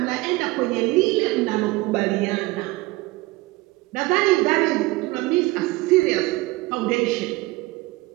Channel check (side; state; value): left; quieter; 21.1 dB